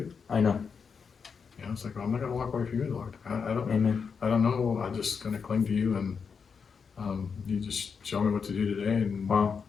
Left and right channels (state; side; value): quieter; right; 5.9 dB